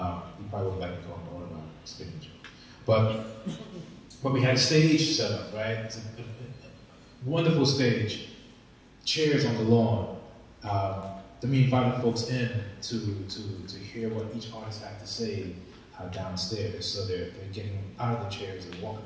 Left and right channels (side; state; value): both; identical; correlation 1.00